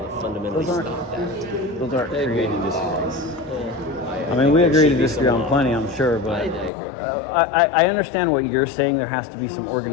that fundamentally Those aren't- stop that. Those aren't creating laws. I mean, think we there agree to should be disagree some on law. plenty, I'm sure, but I agree. I understand what you're saying. There has to be some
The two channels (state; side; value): drops out; right; at 6.7 s